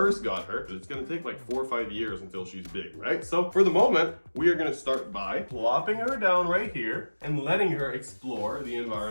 got her. It's gonna take like 4 or 5 years until she's big, right? So for the moment, we are gonna start by plopping her down right here and letting her explore the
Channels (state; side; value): inverted; both; correlation -1.00